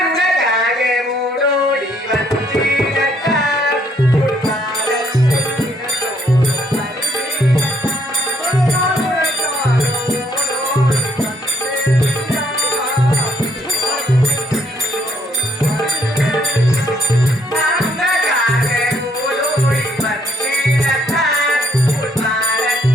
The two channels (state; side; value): normal; both; correlation 0.68